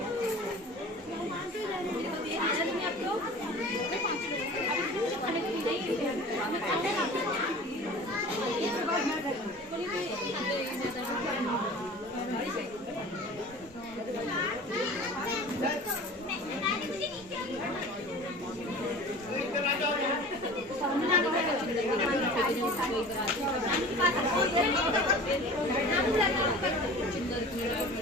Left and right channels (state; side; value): normal; both; correlation 0.40